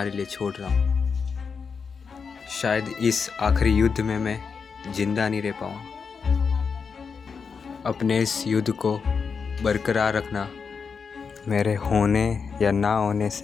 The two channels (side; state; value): right; quieter; 5.7 dB